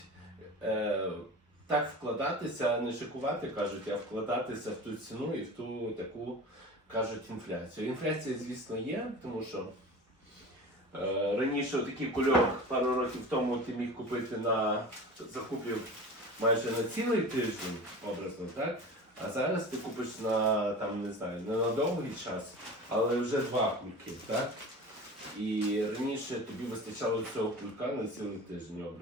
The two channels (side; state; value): both; normal; correlation 0.35